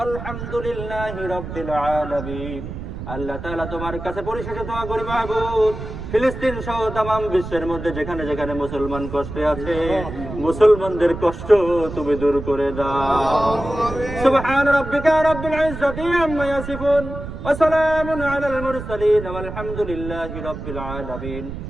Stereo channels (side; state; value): right; noise; rumble, 9 dB below the sound